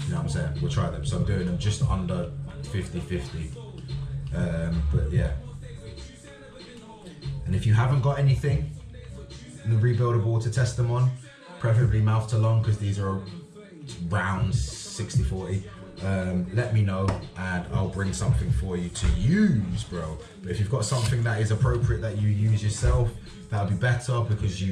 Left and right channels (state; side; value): identical; both; correlation 1.00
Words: know what I'm saying? We'll try them. So I'm doing them just under 50-50. But yeah. And if you haven't got anything in the rebuildable to test them on, preferably mouth to lung, because these are rounds 60-40, let me know and I'll bring something for you to use, bro. But if you've got something that is appropriate that you use yourself, that'll be better because